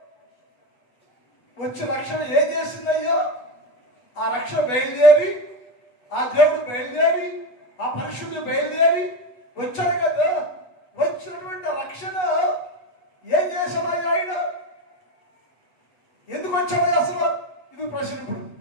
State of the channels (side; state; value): right; late; 8.2 ms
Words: వచ్చి రక్షణ ఏం చేసింది అయ్యో? ఆ రక్షణ బయలుదేరి, ఆ దేవుడు బయలుదేరి, ఆ పరిశుద్ధుడు బయలుదేరి వచ్చాడు కదా. వచ్చినటువంటి రక్షణ ఏం చేశాడు ఆయన? ఎందుకు వచ్చాడు అసలు? ఇది ప్రశ్న. ఇప్పుడు